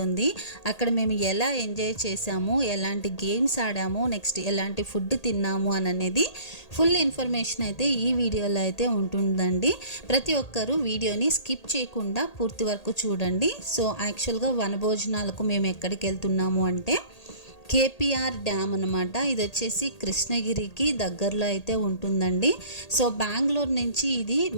అక్కడ మేము ఎలా ఎంజాయ్ చేసాము, ఎలాంటి గేమ్స్ ఆడాము, నెక్స్ట్ ఎలాంటి ఫుడ్ తిన్నాము అనేది ఫుల్ ఇన్ఫర్మేషన్ అయితే ఈ వీడియోలో అయితే ఉంటుందండి. ప్రతి ఒక్కరూ వీడియోని స్కిప్ చేయకుండా పూర్తి వరకు చూడండి. సో యాక్చువల్గా వనభోజనాలకు మేము ఎక్కడికి వెళ్తున్నాము అంటే కేపీఆర్ డ్యామ్ అనమాట. ఇది వచ్చేసి కృష్ణగిరికి దగ్గరలో అయితే ఉంటుందండి. సో బెంగళూరు నుంచి ఇది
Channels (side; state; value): right; late; 1.8 ms